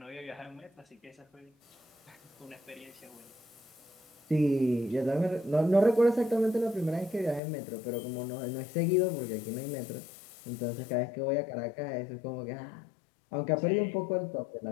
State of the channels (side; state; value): right; drops out; at 7.4 s